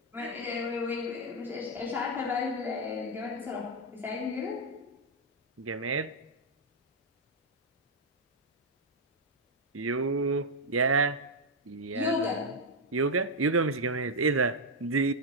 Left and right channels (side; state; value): both; normal; correlation 0.00